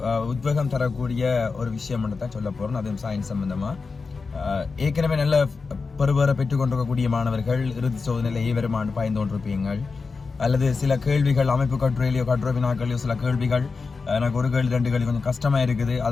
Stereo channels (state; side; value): quieter; right; 4.5 dB